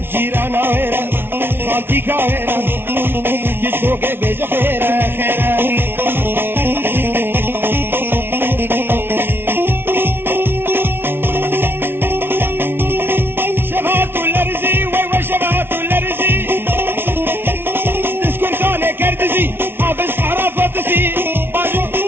جيرانا وير خالتي كاويرة كشكوك بيج خيرة خيرة شبهات الارزي ويوا شبهات الارزي تسكن كان كردزي حافظ حرافاتسي باجو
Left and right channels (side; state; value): left; late; 0.11 ms